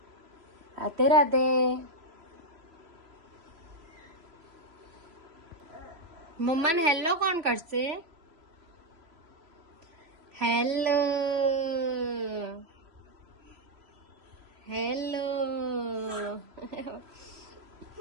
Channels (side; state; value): left; late; 3.0 ms